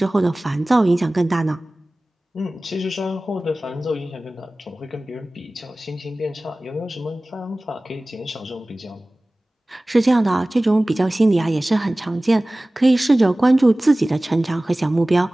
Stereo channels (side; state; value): both; normal; correlation 0.98